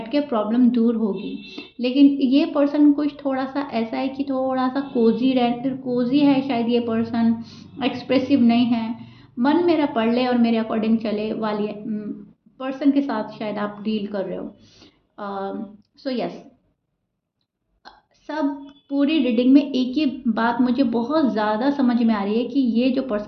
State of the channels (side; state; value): both; identical; correlation 1.00